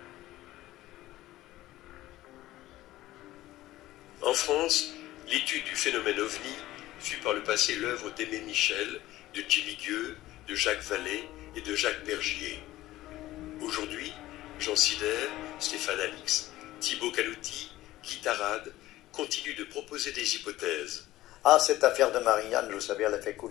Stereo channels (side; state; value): right; quieter; 16.0 dB